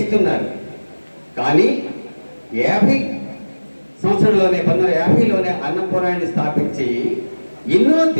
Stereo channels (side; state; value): both; inverted; correlation -1.00